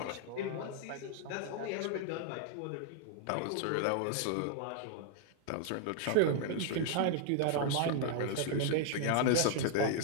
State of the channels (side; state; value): both; different; correlation -0.01